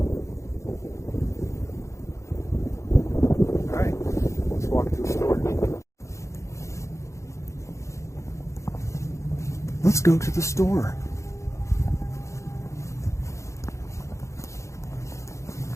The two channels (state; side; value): late; right; 0.14 ms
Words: Alright, let's walk to the store. Let's go to the store.